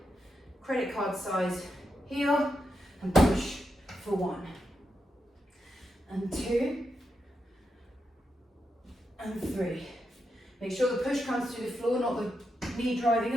Credit card size heel and push for 1. And 2. And 3. Make sure the push comes through the floor, not the knee driving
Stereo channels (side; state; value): both; normal; correlation 0.85